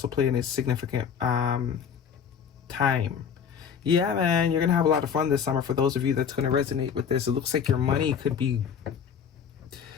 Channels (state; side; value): quieter; right; 7.4 dB